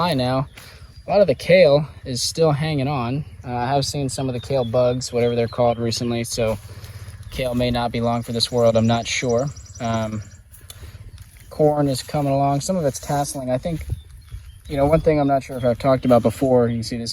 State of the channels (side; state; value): both; identical; correlation 1.00